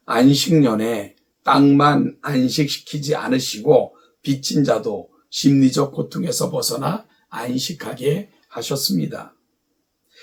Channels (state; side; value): identical; both; correlation 1.00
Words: 안식년에 땅만 안식시키지 않으시고 빚진 자도 심리적 고통에서 벗어나 안식하게 하셨습니다.